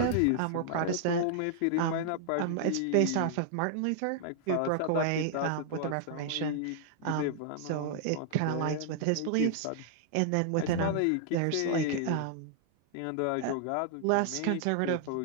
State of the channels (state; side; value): different; both; correlation 0.00